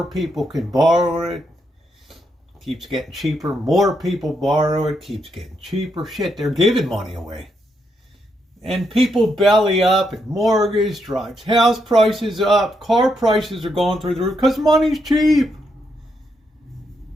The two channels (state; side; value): normal; both; correlation 0.79